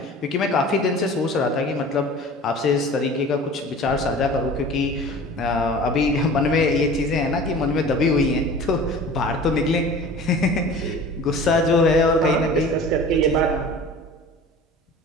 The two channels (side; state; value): both; normal; correlation 0.41